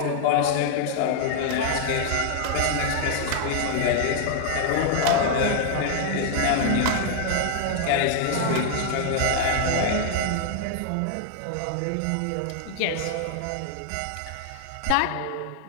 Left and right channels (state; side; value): different; both; correlation 0.00